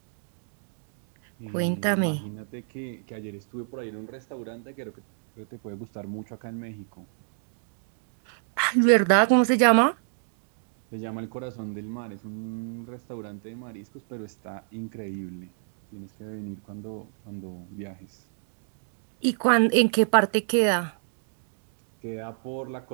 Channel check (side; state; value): left; silent; digital silence